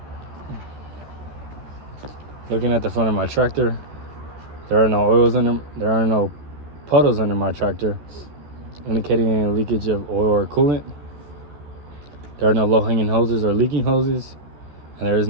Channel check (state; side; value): late; left; 13 ms